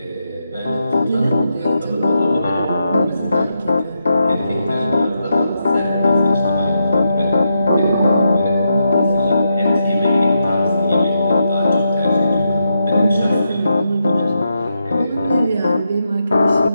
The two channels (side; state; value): both; inverted; correlation -0.84